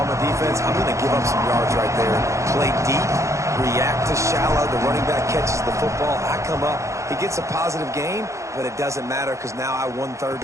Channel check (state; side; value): late; left; 0.15 ms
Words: a defense, I'm going to give up some yards right there. Play deep, react to shallow. The running back catches the football. I come up. He gets a positive gain, but it doesn't matter because now I won 3rd